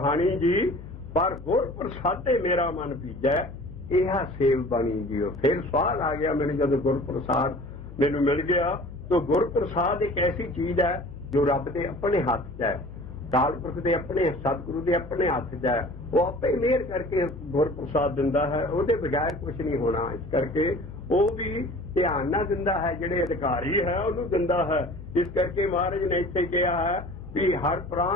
ਜੀ। ਪਰ ਗੁਰ ਪ੍ਰਸਾਦੇ ਮੇਰਾ ਮਨ ਭਿੱਜਾ, ਇਹ ਸੇਵ ਬਣੀ ਜੀਓ। ਫਿਰ ਸਵਾਲ ਆ ਗਿਆ ਮੈਨੂੰ ਜਦੋਂ ਗੁਰ ਪ੍ਰਸਾਦ ਮੈਨੂੰ ਮਿਲ ਗਿਆ। ਤਾਂ ਗੁਰ ਪ੍ਰਸਾਦ ਇੱਕ ਐਸੀ ਚੀਜ਼ ਹੈ ਜੋ ਰੱਬ ਦੇ ਆਪਣੇ ਹੱਥ 'ਚ ਹੈ, ਅਕਾਲ ਪੁਰਖ ਦੇ ਆਪਣੇ, ਸਤਿਗੁਰੂ ਦੇ ਆਪਣੇ ਹੱਥ 'ਚ ਹੈ। ਉਹ ਆਪੇ ਮਿਹਰ ਕਰਕੇ ਗੁਰ ਪ੍ਰਸਾਦ ਦਿੰਦਾ ਹੈ, ਉਹਦੇ ਬਗੈਰ ਕੁਝ ਨਹੀਂ ਹੋਣਾ। ਇਸ ਕਰਕੇ ਉਹ ਵੀ ਧਿਆਨ ਨਾਲ ਦਿੰਦਾ ਹੈ, ਜਿਹੜੇ ਅਧਿਕਾਰੀ ਹੈ ਉਹਨੂੰ ਦਿੰਦਾ ਹੈ। ਇਸ ਕਰਕੇ ਮਹਾਰਾਜ ਨੇ ਇੱਥੇ ਕਿਹਾ ਹੈ ਵੀ ਹਰ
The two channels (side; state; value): left; noise; hum, 14 dB below the sound